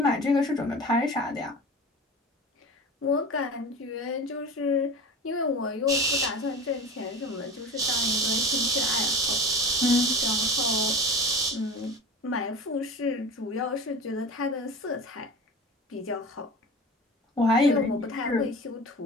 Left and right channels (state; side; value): normal; both; correlation 0.34